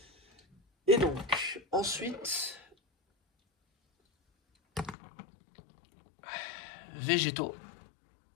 Et donc, ensuite, végétaux.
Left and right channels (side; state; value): right; drops out; at 5.0 s